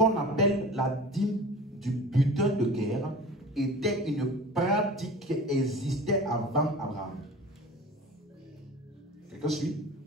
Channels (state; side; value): normal; both; correlation 0.39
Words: appelle la dîme du butin de guerre était une pratique qui existait avant Abraham. Quelqu'un suit?